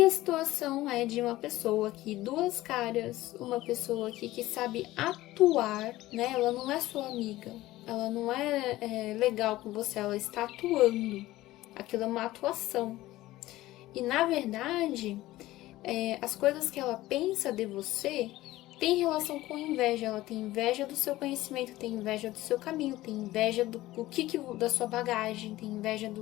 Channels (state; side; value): quieter; right; 16.7 dB